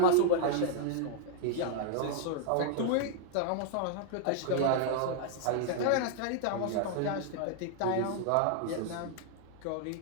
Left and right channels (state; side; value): different; both; correlation -0.01